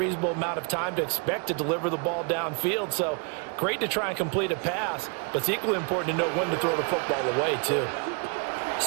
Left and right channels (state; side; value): quieter; left; 37.1 dB